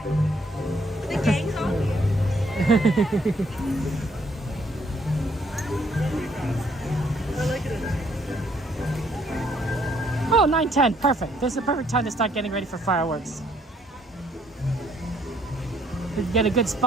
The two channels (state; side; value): normal; both; correlation 0.67